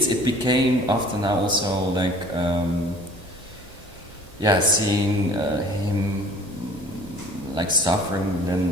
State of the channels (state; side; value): normal; both; correlation 0.50